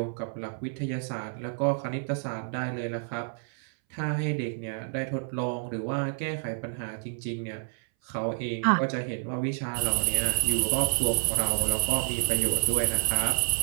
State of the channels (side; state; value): left; silent; 59 dB below the other